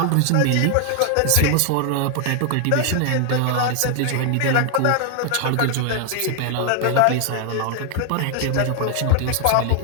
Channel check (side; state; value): both; different; correlation 0.00